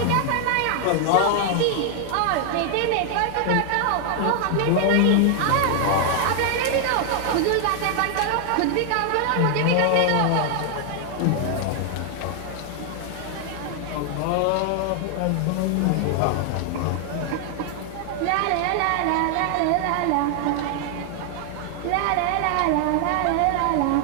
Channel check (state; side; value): different; both; correlation 0.00